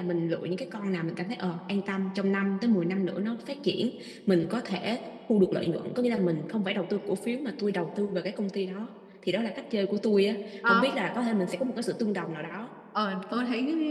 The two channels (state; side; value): identical; both; correlation 1.00